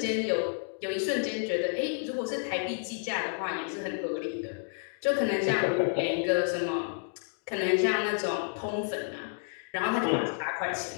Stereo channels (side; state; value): right; silent; 57 dB below the other